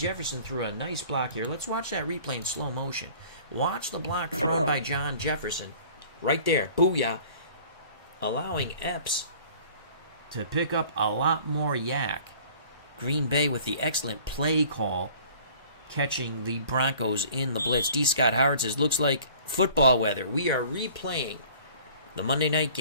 threw a nice block here. Let's watch that replay in slow motion. Watch the block thrown by John Jefferson. Right there. Booyah. Allowing Epps to pick up a lot more yak. Green Bay with the excellent play call, catching the Broncos in the blitz. D. Scott Howard says, looks like football weather. We are replaying the Monday night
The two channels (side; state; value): both; inverted; correlation -0.50